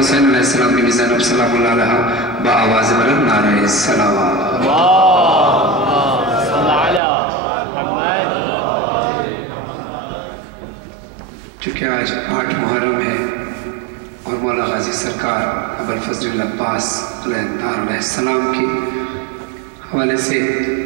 علیہ السلام، بیوی زینب سلام اللہ علیہ، با آواز بلند نعرہ السلام صلی علی محمد۔ چونکہ آج 8 محرم ہے اور مولا غازی سرکار ابوالفضل العباس علیہ السلام کے حوالے سے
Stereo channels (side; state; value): left; drops out; at 7.0 s